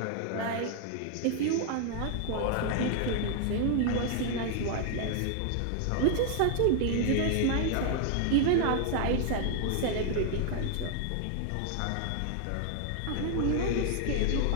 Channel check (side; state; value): both; different; correlation 0.00